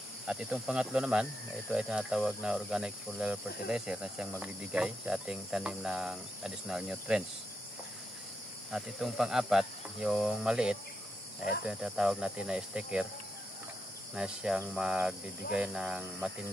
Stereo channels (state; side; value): normal; both; correlation 0.84